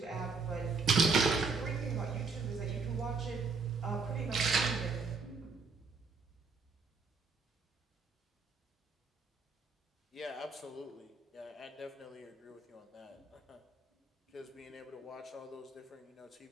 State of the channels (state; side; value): quieter; left; 4.4 dB